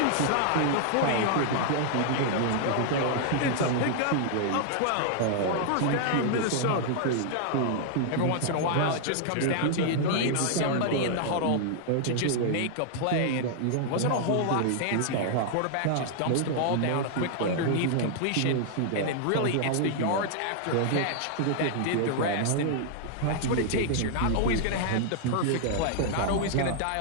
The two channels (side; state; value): both; different; correlation -0.01